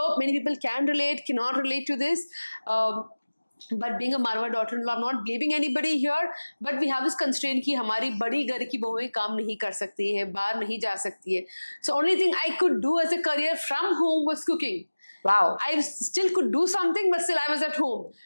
many people can relate, cannot relate to this. But being a Marwadi daughter-in-law, I'm not blaming anybody here, but we have this constraint कि हमारी बड़ी घर की बहुएं काम नहीं कर सकती है, बाहर नहीं जा सकती है. So only thing I could do as a career from home was cooking. Wow. I still could do something, but still I was at home.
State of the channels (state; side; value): inverted; both; correlation -1.00